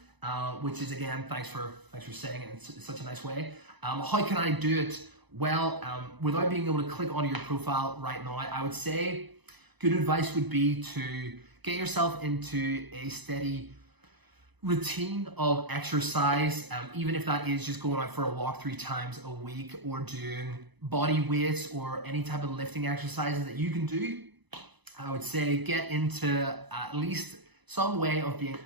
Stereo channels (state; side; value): late; left; 1.0 ms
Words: which is, again, thanks for saying it in such a nice way. How can I do it? Well, without being able to click onto your profile right now, I would say good advice would be to get yourself into a steady routine of exercise, even if that is just going out for a walk 3 times a week, or doing body weights or any type of lifting exercises that you can do. I would say get into at least some way of being